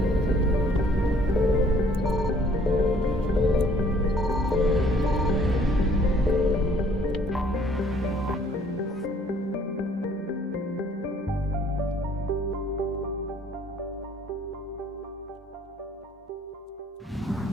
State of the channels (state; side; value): normal; both; correlation 0.60